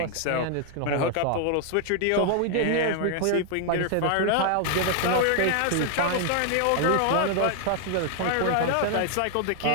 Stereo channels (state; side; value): different; both; correlation 0.00